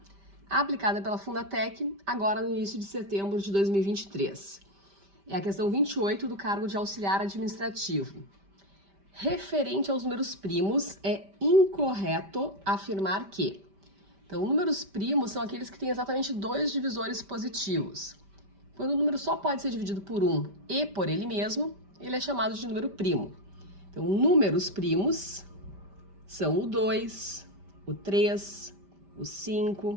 aplicada pela Fundatec, agora no início de setembro de 2023. É a questão 28 do cargo de auxiliar administrativo. Referente aos números primos, é incorreto afirmar que... Então, números primos são aqueles que têm exatamente dois divisores positivos. Quando o número só pode ser dividido por 1 e por ele mesmo, ele é chamado de número primo. Então, números primos são o 2, o 3, o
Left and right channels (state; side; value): late; left; 5.1 ms